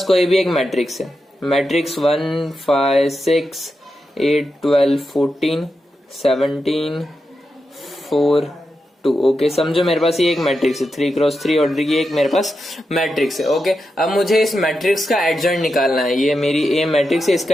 कोई भी एक मैट्रिक्स है, मैट्रिक्स 1 5 6 8 12 14 17 4 2। ओके, समझो मेरे पास ये एक मैट्रिक्स है, 3x3 ऑर्डर की एक मेरे पास मैट्रिक्स है। ओके, अब मुझे इस मैट्रिक्स का एडजॉइंट निकालना है। ये मेरी ए मैट्रिक्स है,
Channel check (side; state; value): both; normal; correlation 0.88